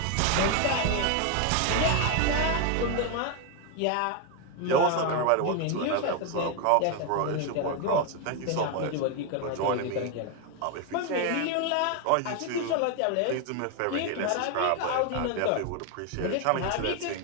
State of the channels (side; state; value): both; different; correlation 0.01